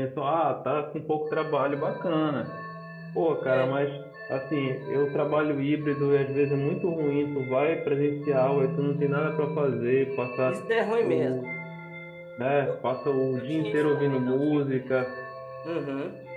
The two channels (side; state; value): both; identical; correlation 1.00